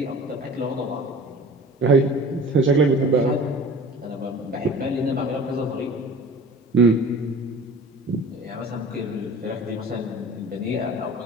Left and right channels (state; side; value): normal; both; correlation 0.41